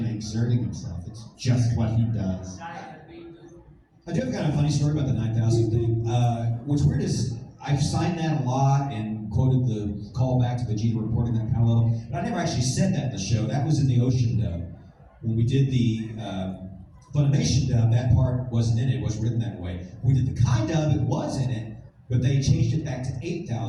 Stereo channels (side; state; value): both; identical; correlation 1.00